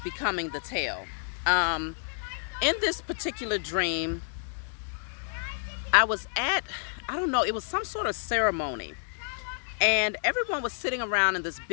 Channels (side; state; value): right; silent; 57 dB below the other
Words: becoming the tail. Um, in this particular dream, I was at, I don't know, it was some sort of ceremony. And everyone was sitting around in this